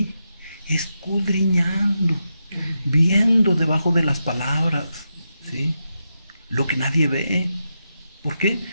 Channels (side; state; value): both; inverted; correlation -0.87